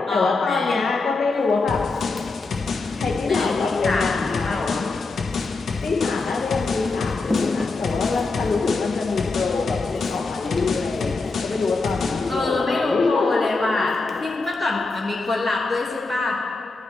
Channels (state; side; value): quieter; right; 3.7 dB